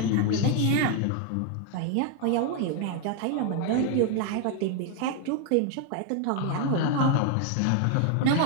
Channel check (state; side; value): different; both; correlation 0.00